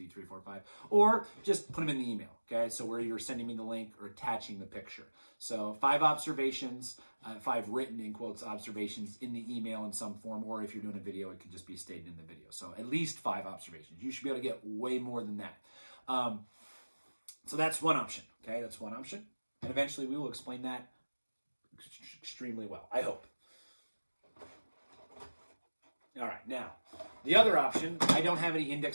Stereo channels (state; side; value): inverted; both; correlation -1.00